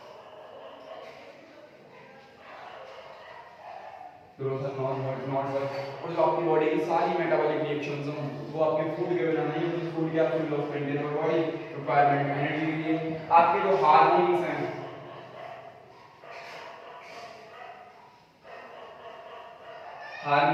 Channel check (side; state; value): both; identical; correlation 1.00